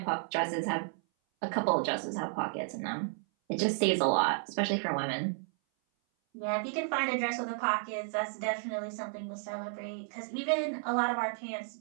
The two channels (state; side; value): silent; left; 56 dB below the other